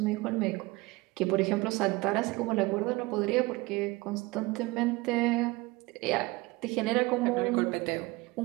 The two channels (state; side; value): quieter; left; 22.3 dB